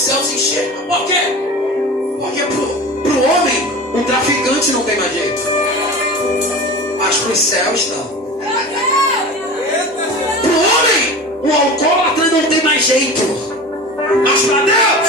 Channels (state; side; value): normal; both; correlation 0.33